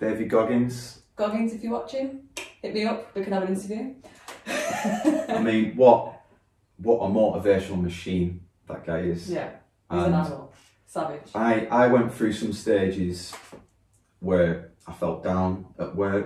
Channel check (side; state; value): both; identical; correlation 1.00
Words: Goggins. Goggins, if you're watching, hit me up. We can have an interview. I mean, what a motivational machine that guy is. Yeah. He's an animal. Savage. I went through some stages where I felt down at